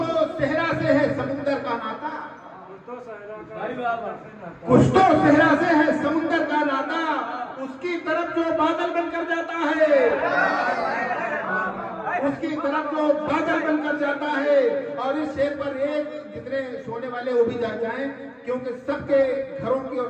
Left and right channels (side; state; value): both; identical; correlation 1.00